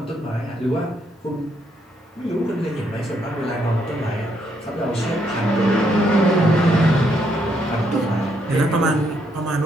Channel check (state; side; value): normal; both; correlation 0.74